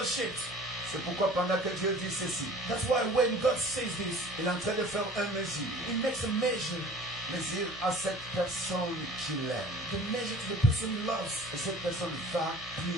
shaped. C'est pourquoi pendant que Dieu dit ceci, That's why when God says this, il est en train de faire une mesure. he makes a measure. Mesure à cette personne qu'il aime. The measure to the person he loves. Et cette personne va plus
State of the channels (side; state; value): both; normal; correlation 0.46